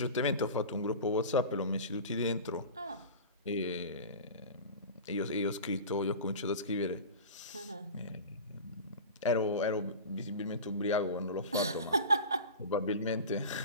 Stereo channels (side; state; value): both; inverted; correlation -0.32